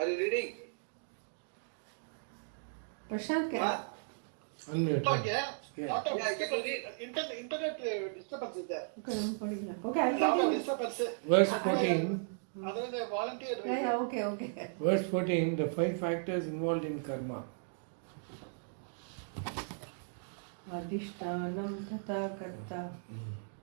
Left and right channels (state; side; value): silent; left; digital silence